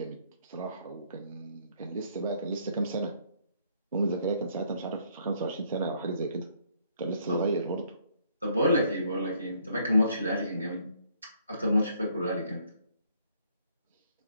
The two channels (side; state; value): both; inverted; correlation -0.66